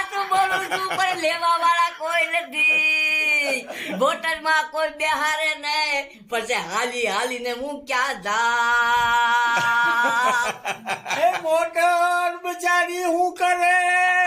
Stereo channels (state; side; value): identical; both; correlation 1.00